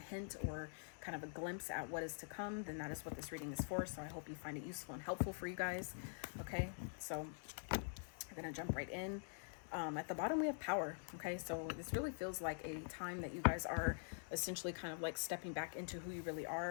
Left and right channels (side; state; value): right; silent; digital silence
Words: or kind of a glimpse at what is to come, then that is what this reading is for. So I hope you find it useful and helpful for you guys. Okay, so I'm gonna jump right in. At the bottom we have power. Okay, so this really feels like a time that you guys are essentially kind of like stepping back into who you really